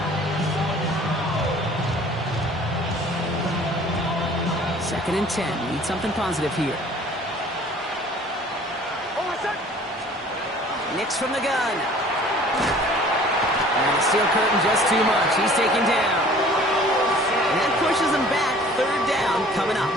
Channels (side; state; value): both; normal; correlation 0.50